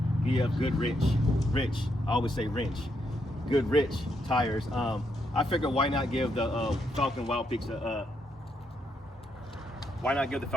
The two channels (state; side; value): normal; both; correlation 0.78